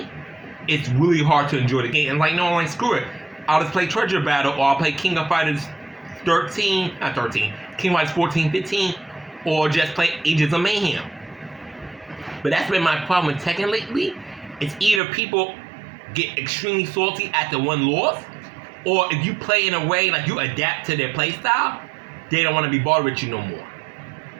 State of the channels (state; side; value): drops out; left; at 15.0 s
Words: it's really hard to enjoy the game. And like, no, I'm like, screw it. I'll just play Treasure Battle, or I'll play King of Fighters 13, not 13, King of Fighters 14, 15, or just play Ages of Mayhem. But that's been my problem with Tekken lately. It's either people get extremely salty at the one loss, or if you play in a way like you adapt to their play style, they don't want to be bothered with you no more.